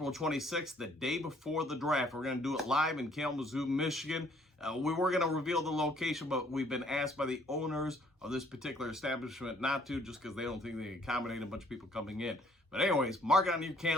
26th, the day before the draft. We're going to do it live in Kalamazoo, Michigan. We were going to reveal the location, but we've been asked by the owners of this particular establishment not to, just because they don't think they can accommodate a bunch of people coming in. But anyways, mark it on your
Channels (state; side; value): normal; both; correlation 0.62